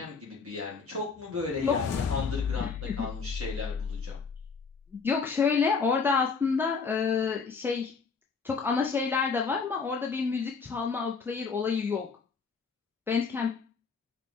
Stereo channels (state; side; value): quieter; right; 5.2 dB